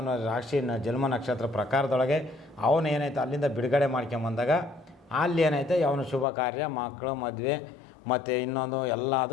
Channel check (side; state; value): right; drops out; at 6.2 s